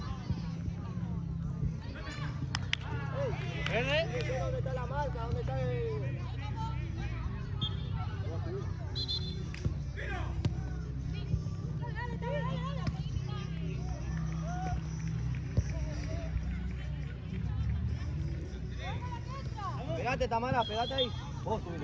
¿Dónde está la marca? ¿Dónde está el...? Pegate, Tamara, pegate ahí. Vos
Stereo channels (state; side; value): identical; both; correlation 1.00